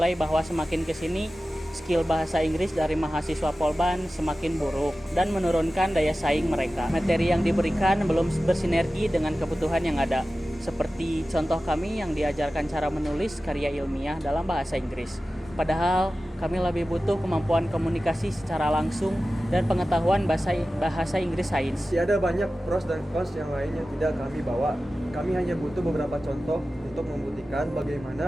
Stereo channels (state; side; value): normal; both; correlation 0.95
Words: bahwa semakin kesini skill bahasa Inggris dari mahasiswa Polban semakin buruk dan menurunkan daya saing mereka. Materi yang diberikan belum bersinergi dengan kebutuhan yang ada. Seperti contoh kami yang diajarkan cara menulis karya ilmiah dalam bahasa Inggris. Padahal kami lebih butuh kemampuan komunikasi secara langsung dan pengetahuan bahasa Inggris sains. Ada banyak pros dan cons yang lain yang tidak kami bawa. Kami hanya butuh beberapa contoh untuk membuktikan